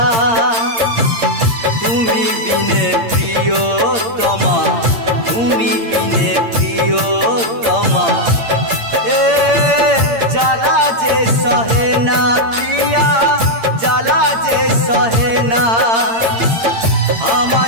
তুমি বিনে প্রিয়তমা, তুমি বিনে প্রিয়তমা এ জ্বালা যে সহে না, প্রিয়া জ্বালা যে সহে না।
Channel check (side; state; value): left; late; 8.8 ms